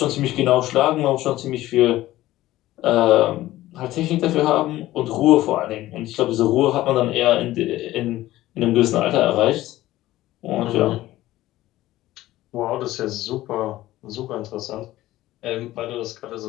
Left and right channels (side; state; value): right; quieter; 15.8 dB